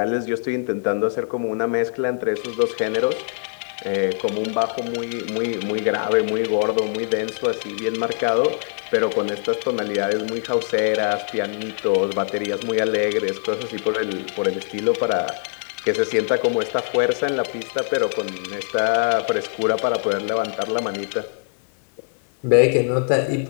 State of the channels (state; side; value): silent; right; 64 dB below the other